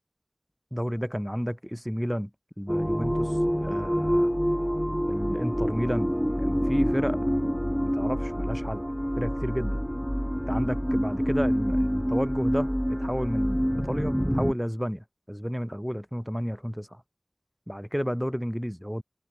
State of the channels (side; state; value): both; identical; correlation 1.00